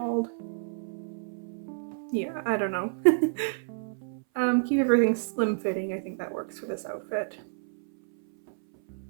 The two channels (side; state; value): left; silent; 58 dB below the other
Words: Yeah, I don't know. Keep everything slim fitting. I think that works for this outfit.